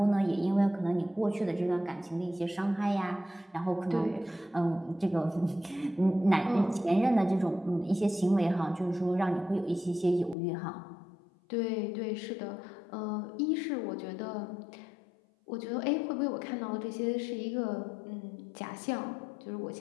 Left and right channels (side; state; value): right; drops out; at 10.4 s